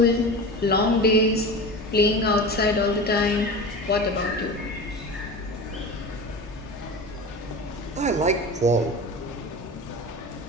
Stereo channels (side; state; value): both; normal; correlation 0.30